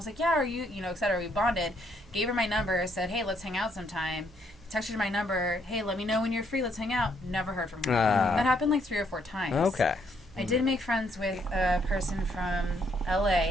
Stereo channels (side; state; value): both; normal; correlation 0.71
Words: like, yeah, are you, et cetera. We bonded. Gave her my number, said, hey, let's hang out sometime. Texted her my number. Hey, let me know when you're free. Let's hang out. Never heard from her. That happened like 3 or 4 times. Okay. I did make friends with a person from